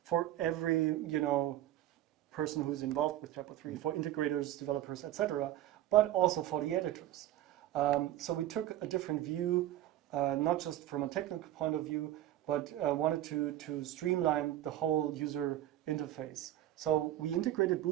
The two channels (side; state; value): left; quieter; 13.4 dB